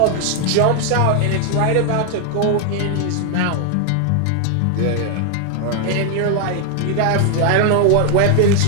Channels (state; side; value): different; both; correlation 0.00